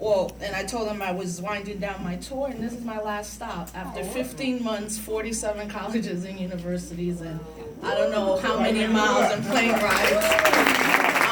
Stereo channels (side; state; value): both; identical; correlation 1.00